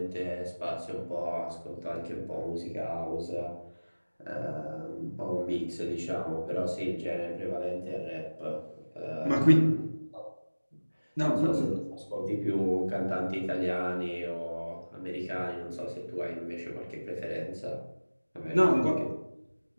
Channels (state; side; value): inverted; both; correlation -1.00